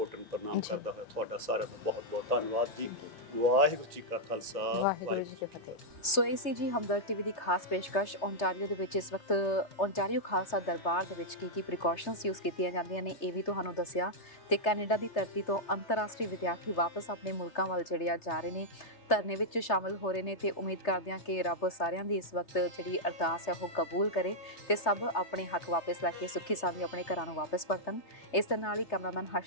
ਪ੍ਰਣਾਮ ਕਰਦਾ ਹੋਇਆ ਤੁਹਾਡਾ ਸਾਰਿਆਂ ਦਾ ਬਹੁਤ ਬਹੁਤ ਧੰਨਵਾਦ ਜੀ। ਵਾਹਿਗੁਰੂ ਜੀ ਕਾ ਖਾਲਸਾ, ਵਾਹਿਗੁਰੂ ਜੀ ਕੀ ਫਤਿਹ। ਸੋ ਇਹ ਸੀ ਜੀ ਹਮਦਰਦ ਟੀਵੀ ਦੀ ਖਾਸ ਪੇਸ਼ਕਸ਼। ਓਂਟਾਰੀਓ ਦੇ ਵਿੱਚ ਇਸ ਵਕਤ ਓਂਟਾਰੀਓ ਖਾਲਸਾ ਦਰਬਾਰ ਦੇ ਵਿੱਚ ਕੀ ਪ੍ਰੀਕਾਸ਼ਨਸ ਯੂਜ਼ ਕੀਤੀਆਂ ਜਾਂਦੀਆਂ ਨੇ ਇਹ ਵੀ ਤੁਹਾਨੂੰ ਦੱਸਿਆ। ਤੇ ਕੈਨੇਡਾ ਦੀ ਧਰਤੀ ਤੋਂ ਅੰਤਰਰਾਸ਼ਟਰੀ ਵਿਦਿਆਰਥੀ ਵਾਪਸ ਆਪਣੇ ਮੁਲਕਾਂ ਵੱਲ ਜਿਹੜੇ ਆ ਜਾ ਰਹੇ ਨੇ, ਧਰਨੇ ਵਿੱਚ ਸ਼ਾਮਲ ਹੋ ਰਹੇ ਨੇ। ਤੇ ਉਮੀਦ ਕਰਦੇ ਹਾਂ ਕਿ ਰੱਬ ਸਾਰਿਆਂ ਦੀ ਇਸ ਵਕਤ ਜਿਹੜੀ ਅਰਦਾਸ ਹੈ ਉਹ ਕਬੂਲ ਕਰੇ ਤੇ ਸਭ ਆਪਣੇ ਹੱਕ ਵਾਪਸ ਲੈ ਕੇ ਸੁੱਖੀ ਸਾਂਦੀ ਆਪਣੇ ਘਰਾਂ ਨੂੰ ਵਾਪਸ ਪਰਤਣ। ਇਸ ਦੇ ਨਾਲ ਹੀ ਕੈਮਰਾਮੈਨ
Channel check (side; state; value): right; late; 3.3 ms